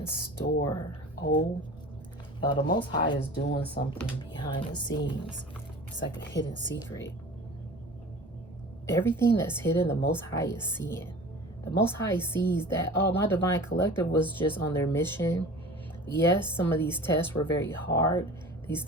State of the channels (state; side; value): normal; both; correlation 0.40